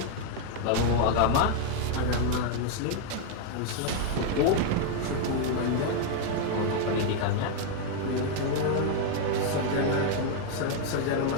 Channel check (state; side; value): different; both; correlation 0.00